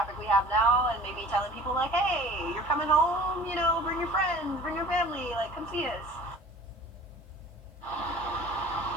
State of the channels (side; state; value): both; normal; correlation 0.45